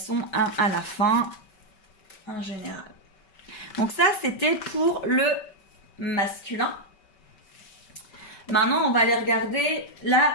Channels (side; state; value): right; late; 5.2 ms